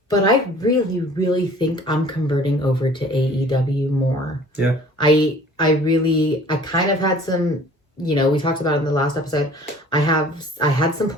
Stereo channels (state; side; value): normal; both; correlation 0.50